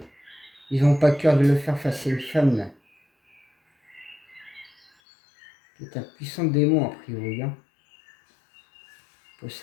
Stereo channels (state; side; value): drops out; right; at 4.9 s